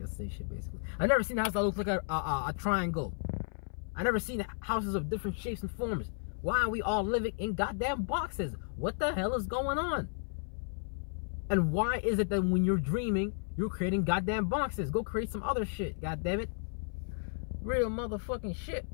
say shit basically. I've never seen a house that looks like a triangle. I've never seen houses of different shapes and forms. Why are we all living in goddamn boxes? What the hell is going on? And why is it that when you're dreaming, you're creating goddamn boxes? Go create some other shit, goddammit. Real motherfucking shit.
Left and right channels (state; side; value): silent; right; 55 dB below the other